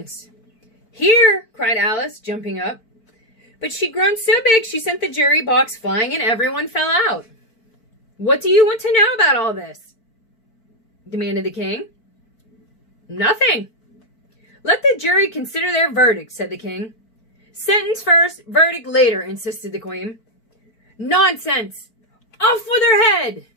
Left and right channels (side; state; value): right; late; 4.5 ms